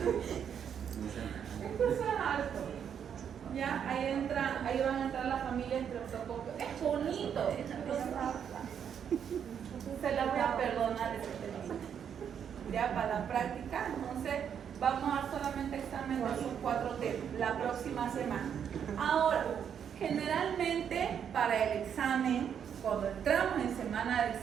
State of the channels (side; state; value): left; quieter; 8.2 dB